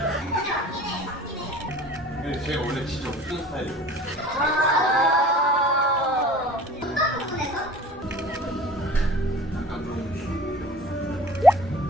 근데 제가 원래 진짜 웃긴 스타일이에요. 어떤 부분에서? 약간 좀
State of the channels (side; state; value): both; normal; correlation 0.44